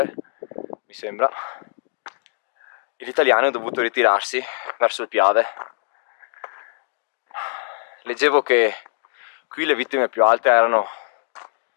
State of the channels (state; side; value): silent; right; 64 dB below the other